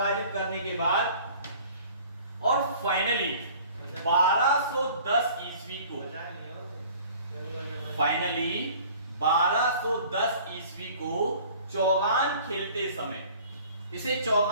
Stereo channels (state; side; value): inverted; both; correlation -0.49